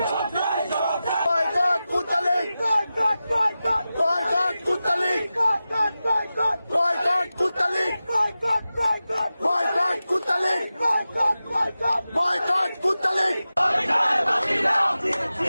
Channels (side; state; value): both; inverted; correlation -0.94